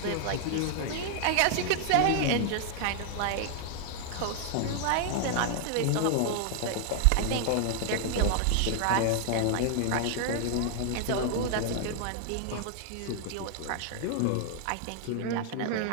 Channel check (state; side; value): different; both; correlation 0.00